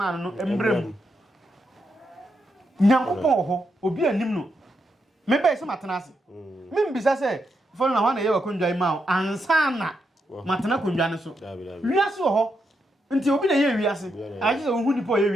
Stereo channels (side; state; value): both; normal; correlation 0.82